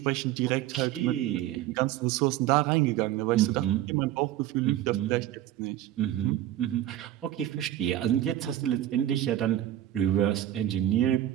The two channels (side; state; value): left; quieter; 12.9 dB